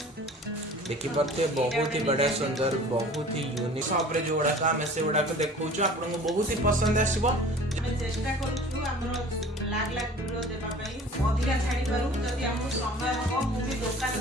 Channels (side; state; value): both; normal; correlation 0.45